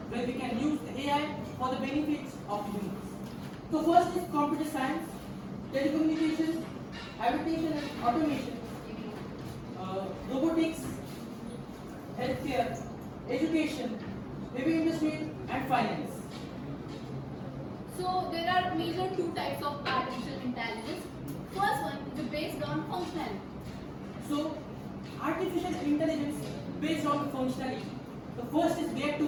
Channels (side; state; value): both; identical; correlation 1.00